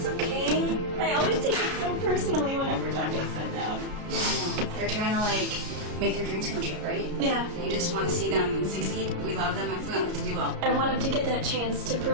okay. I always take it so personally whenever John gets sent down. They're trying to like make their dreams come true, right? Yeah. You just want to see them succeed. We love them and we want them to do well. I want him to get that chance to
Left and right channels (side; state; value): left; late; 33 ms